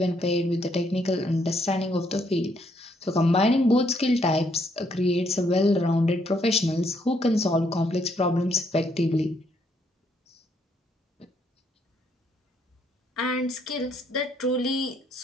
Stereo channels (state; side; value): normal; both; correlation 0.71